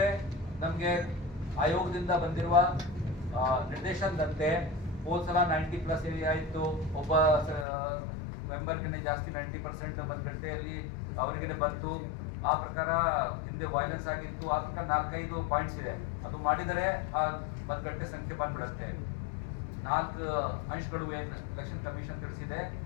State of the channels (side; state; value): right; drops out; at 7.7 s